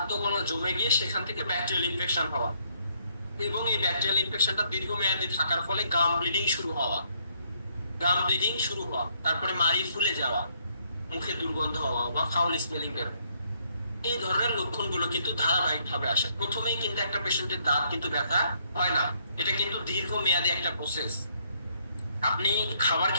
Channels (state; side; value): inverted; both; correlation -0.69